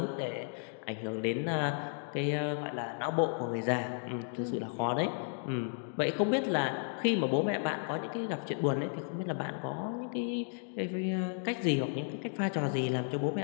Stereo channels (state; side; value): silent; right; 55 dB below the other